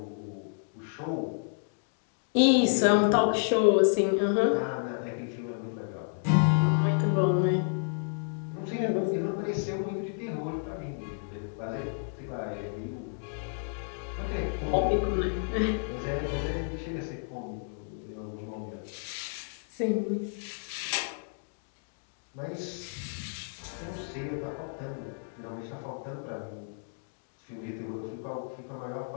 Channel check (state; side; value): silent; right; digital silence